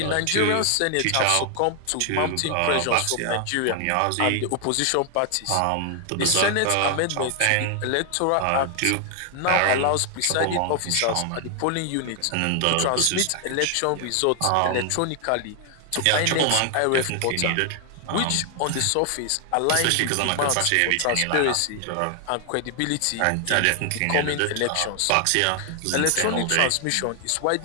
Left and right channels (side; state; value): both; different; correlation 0.00